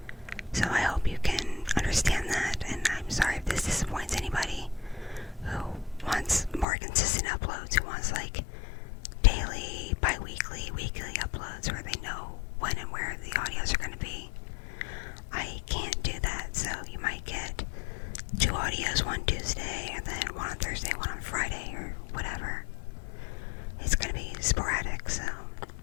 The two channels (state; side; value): drops out; right; at 6.7 s